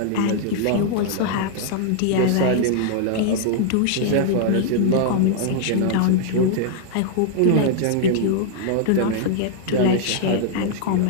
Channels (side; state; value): both; different; correlation 0.00